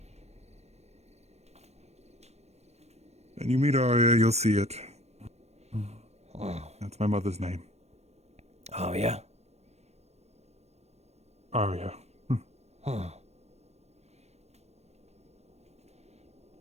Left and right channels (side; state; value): left; late; 0.31 ms